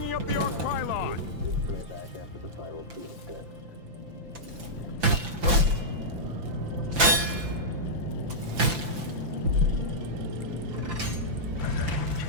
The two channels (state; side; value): late; left; 5.8 ms